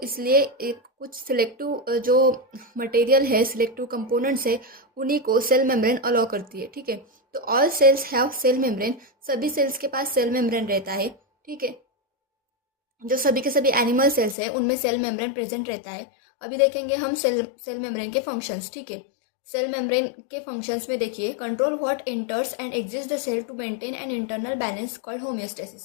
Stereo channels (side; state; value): right; drops out; at 14.4 s